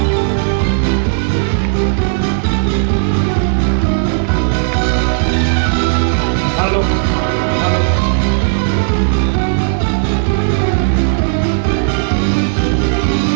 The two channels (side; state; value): left; silent; digital silence